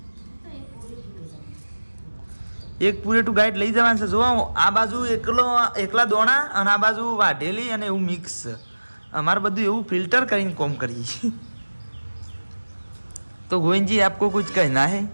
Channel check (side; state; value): both; inverted; correlation -1.00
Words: એક પૂરેટું ગાઈડ લઈ જવાનું છે. જુઓ આ બાજુ એકલા દોણા અને આ બાજુ વાઢેલી અને એવું મિક્સ. અમારે બધું એવું ફિલ્ટર કરીને કોમ કરીએ. તો ગોવિંદજી આપકો कुछ कहना है?